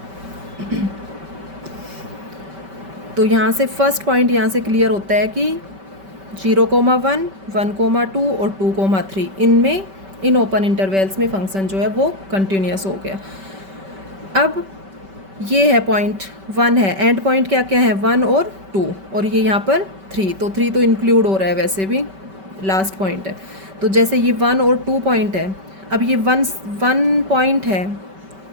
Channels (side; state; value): left; late; 5.2 ms